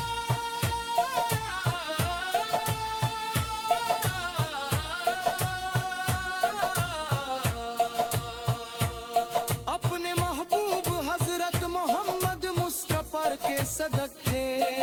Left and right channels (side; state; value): both; identical; correlation 1.00